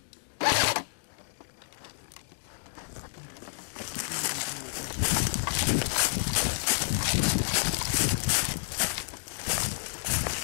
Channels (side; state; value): right; silent; digital silence